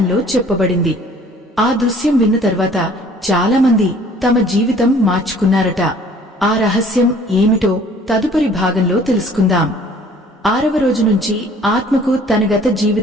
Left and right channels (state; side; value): normal; both; correlation 0.54